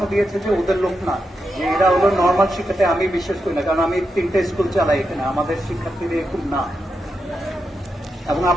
দিয়েছে যে ওদের লোক না, যে এরা হলো নর্মাল শিক্ষাতে। আমি বিশ্বাস করি না, কারণ আমি 3টে স্কুল চালাই এখানে, আমাদের শিক্ষার্থীরা এরকম না। এবং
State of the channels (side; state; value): both; normal; correlation 0.86